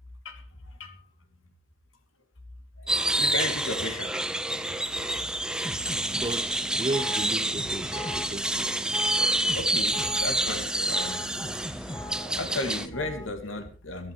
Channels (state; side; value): normal; both; correlation 0.50